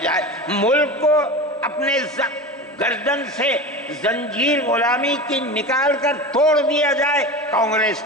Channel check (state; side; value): normal; both; correlation 0.29